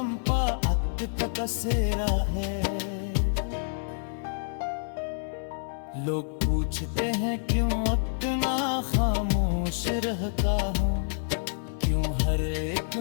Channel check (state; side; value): silent; right; 59 dB below the other